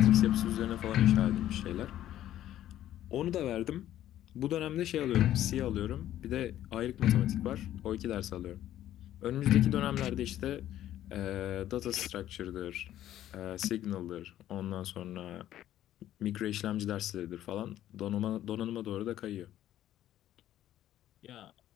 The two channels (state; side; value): quieter; right; 12.5 dB